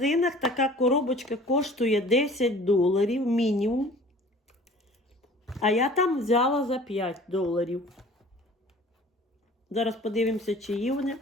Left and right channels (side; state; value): both; normal; correlation 0.47